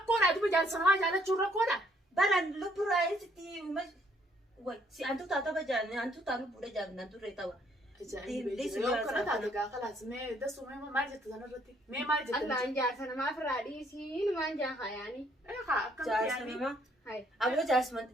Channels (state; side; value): normal; both; correlation 0.67